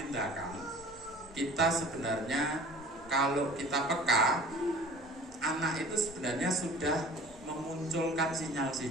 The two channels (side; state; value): both; normal; correlation 0.45